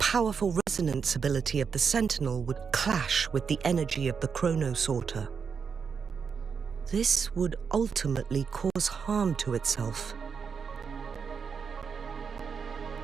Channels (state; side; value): quieter; left; 6.1 dB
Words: resonance ability of the Sentinel would clash with the energy of the chronosorter. This would ultimately cause harm to itself.